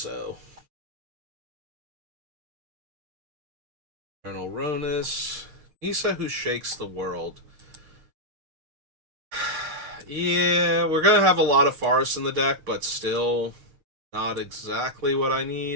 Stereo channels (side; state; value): left; late; 6.6 ms